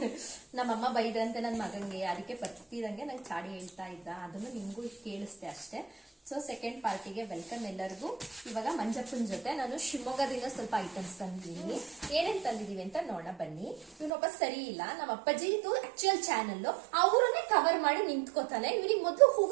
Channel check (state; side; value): drops out; left; at 14.1 s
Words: ನಮ್ಮಮ್ಮ ಬೈದ್ರಂತೆ ನನ್ನ ಮಗಂಗೆ, ಅದಕ್ಕೆ ಬರ್ತಿದಂಗೆ ನಂಗೆ ಚಾಡಿ ಹೇಳ್ತಾ ಇದ್ದ. ಅದನ್ನು ನಿಮ್ಗೂ ಕೇಳಿಸ್ದೆ ಅಷ್ಟೇ. ಸೊ ಸೆಕೆಂಡ್ ಪಾರ್ಟಿಗೆ ವೆಲ್ಕಮ್ ಎಲ್ಲರಿಗೂ. ಇವಾಗ ಮಂಜಪ್ಪನ ಜೊತೆ ನಾನು ಶಿವಮೊಗ್ಗದಿಂದ ಸ್ವಲ್ಪ ಐಟಮ್ಸ್ ತಂದಿದ್ದೀನಿ. ಏನೇನ್ ತಂದಿದೀವಿ ಅಂತ ನೋಡೋಣ ಬನ್ನಿ. ಇವನೊಬ್ಬ ಸರಿ ಇಲ್ಲ, ನಮ್ಮ ಅಪ್ಪಾಜಿ ಇದು ಆಕ್ಚುಯಲ್ ಚಾನಲ್, ಅವರನ್ನೇ ಕವರ್ ಮಾಡಿ ನಿಂತ್ಕೋತಾನೆ. ಇವನಿಗೆ ಮೊದಲು